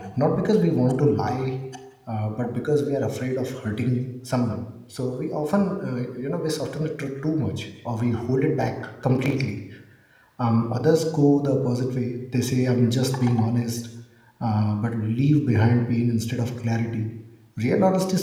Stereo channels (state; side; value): identical; both; correlation 1.00